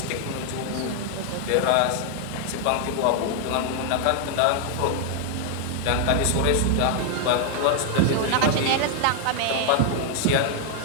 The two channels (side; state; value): both; different; correlation 0.00